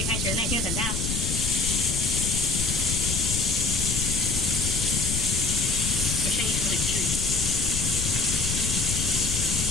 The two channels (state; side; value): noise; left; rumble, 3 dB below the sound